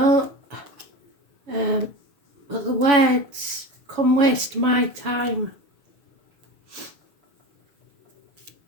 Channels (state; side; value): late; left; 7.0 ms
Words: but the words, come waste my time.